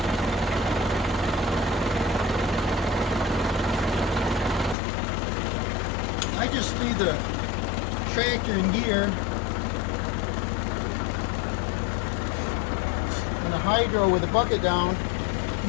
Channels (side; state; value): right; drops out; at 4.8 s